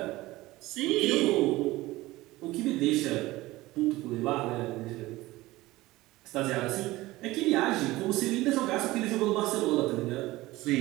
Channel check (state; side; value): quieter; left; 18.7 dB